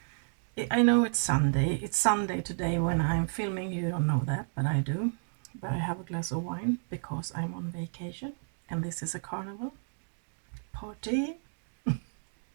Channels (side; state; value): left; silent; digital silence